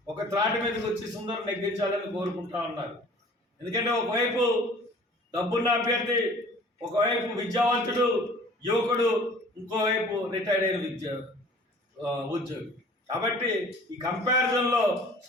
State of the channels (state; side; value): normal; both; correlation 0.49